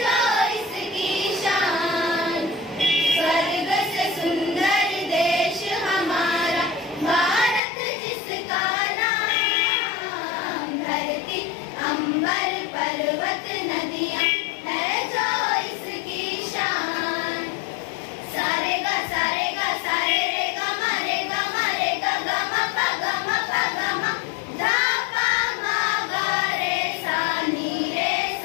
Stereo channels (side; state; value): right; drops out; at 7.6 s